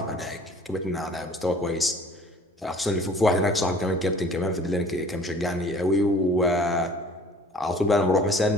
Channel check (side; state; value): both; normal; correlation 0.49